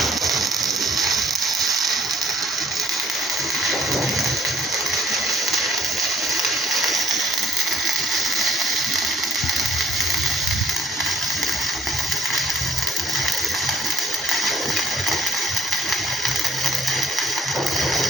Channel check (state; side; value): normal; both; correlation 0.62